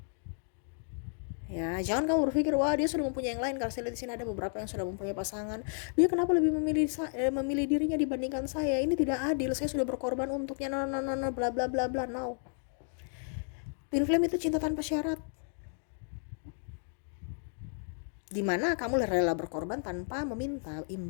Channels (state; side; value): silent; right; 56 dB below the other